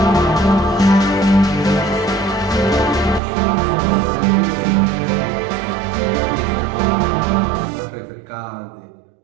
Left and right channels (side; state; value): left; drops out; at 3.2 s